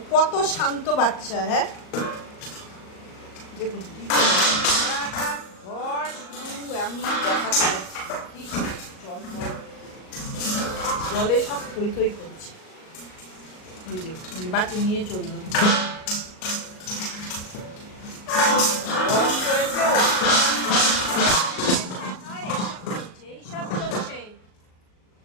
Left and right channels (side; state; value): right; late; 38 ms